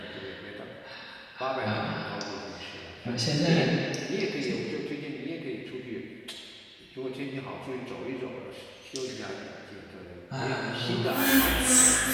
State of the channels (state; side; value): identical; both; correlation 1.00